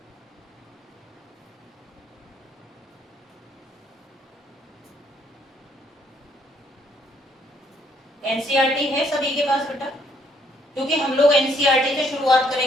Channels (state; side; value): normal; both; correlation 0.68